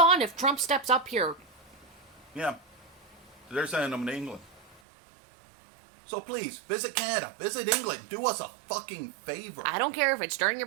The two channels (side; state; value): left; drops out; at 4.8 s